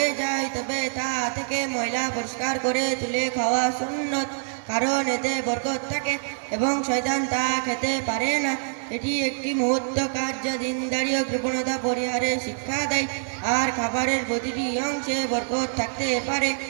যায় তবে তা থেকে ময়লা পরিষ্কার করে তুলে খাওয়া সুন্নত, কারণ এতে বরকত থাকে এবং শয়তান তা খেতে পারে না। এটি একটি মহৎ কাজ যা দিনদারি ও কৃপণতা পরিহারে শিক্ষা দেয়, আর খাবারের প্রতিটি অংশে বরকত থাকতে পারে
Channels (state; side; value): silent; left; digital silence